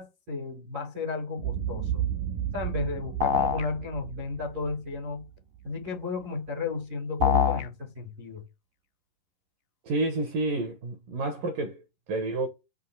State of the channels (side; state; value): left; late; 11 ms